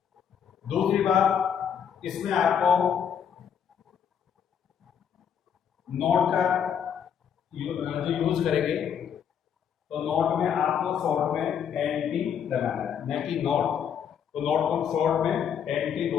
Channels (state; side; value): quieter; right; 8.1 dB